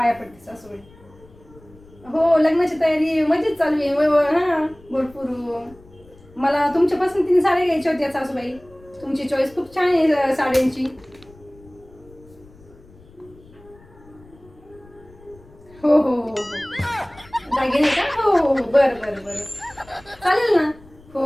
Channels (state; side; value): noise; left; rumble, 25 dB below the sound